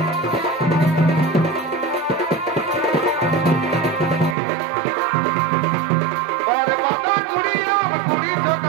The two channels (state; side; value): drops out; left; at 4.4 s